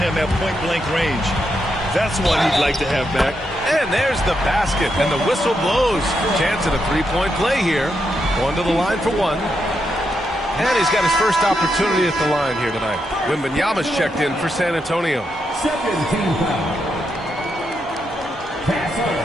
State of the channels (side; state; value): both; normal; correlation 0.82